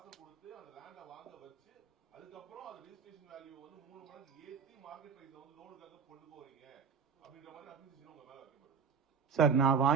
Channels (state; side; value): quieter; left; 6.2 dB